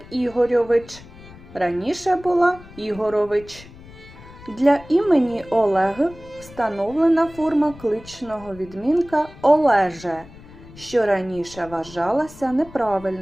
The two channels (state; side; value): noise; left; rumble, 19 dB below the sound